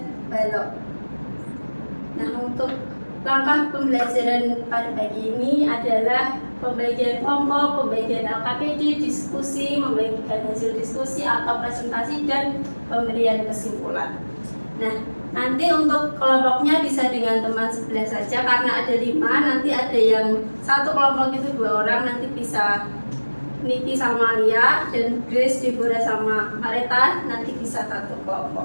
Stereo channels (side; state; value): both; inverted; correlation -1.00